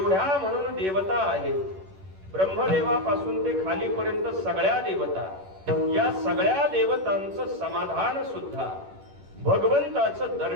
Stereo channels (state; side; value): late; left; 11 ms